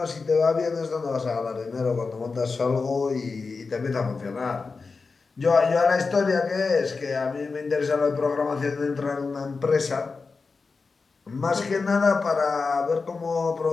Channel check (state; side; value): quieter; right; 4.4 dB